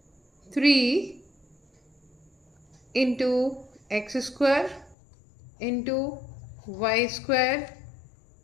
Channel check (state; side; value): drops out; right; at 5.0 s